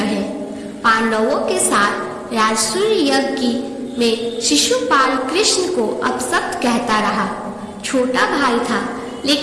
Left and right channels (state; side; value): identical; both; correlation 1.00